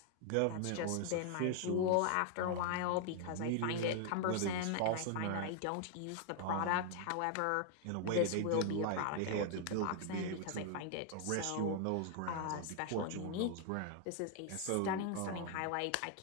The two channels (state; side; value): different; both; correlation 0.00